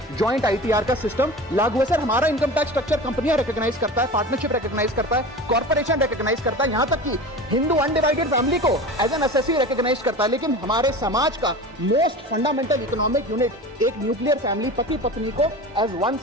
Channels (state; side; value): normal; both; correlation 0.33